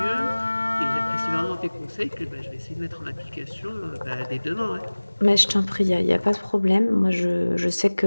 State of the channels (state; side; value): inverted; both; correlation -1.00